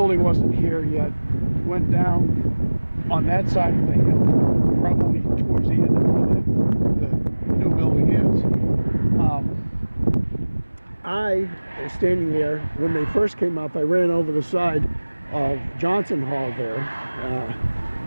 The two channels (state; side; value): inverted; both; correlation -1.00